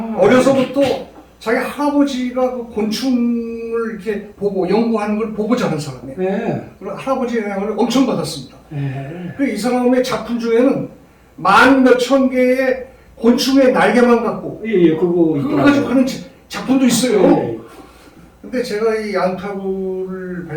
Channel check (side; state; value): both; identical; correlation 1.00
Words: 어려서부터 자기 할아버지가 그 곤충을 이렇게 보고 연구하는 걸 보고 자란 사람이에요. 네. 그리고 할아버지의 영향을 엄청 받았습니다. 네. 그 이 사람의 작품 중에는 만 몇천 개의 곤충의 날개만 갖고 예, 그거 그걸 가지고 하는 작품도 있어요. 네. 근데 제가 이 얀타구를